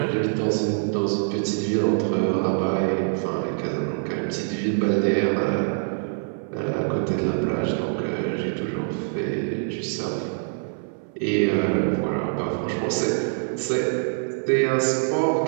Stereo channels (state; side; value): silent; left; 58 dB below the other